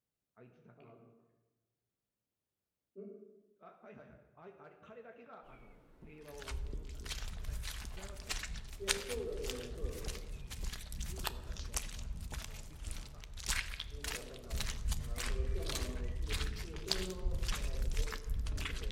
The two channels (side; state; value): both; identical; correlation 1.00